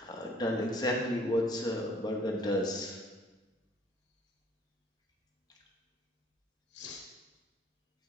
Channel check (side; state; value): both; normal; correlation 0.58